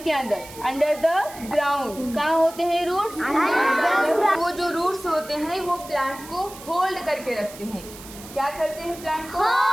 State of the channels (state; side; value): noise; right; hiss, 16 dB below the sound